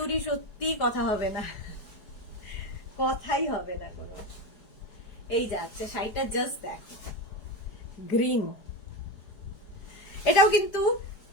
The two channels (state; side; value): late; right; 4.8 ms